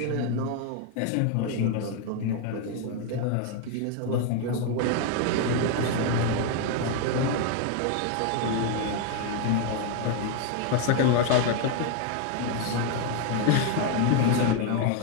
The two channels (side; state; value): both; different; correlation 0.01